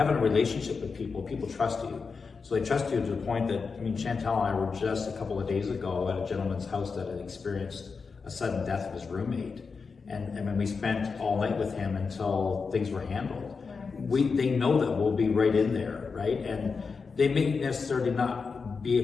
a relationship with people trust you. So they trust you to the point that, Shantel and I were just a couple of days ago at a gentleman's house that had experienced a sudden death of his roommate. And when we spent all night with him until things were handled. They know that we'll be right in there, right? And they may necessarily not be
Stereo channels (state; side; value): quieter; right; 5.0 dB